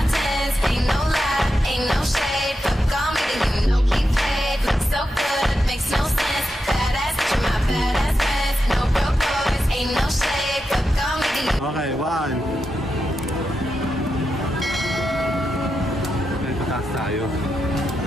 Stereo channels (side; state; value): both; normal; correlation 0.87